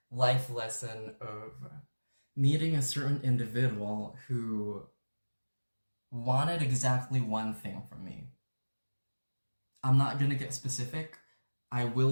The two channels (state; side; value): inverted; both; correlation -1.00